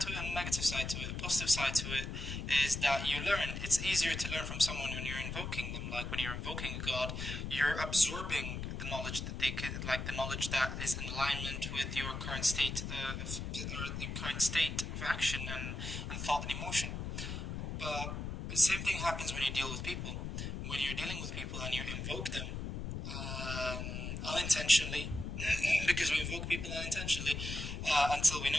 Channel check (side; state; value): left; noise; rumble, 5 dB below the sound